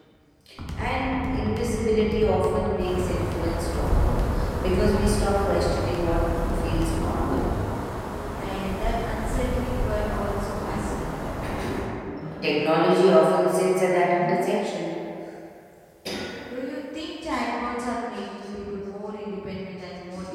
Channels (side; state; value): both; identical; correlation 1.00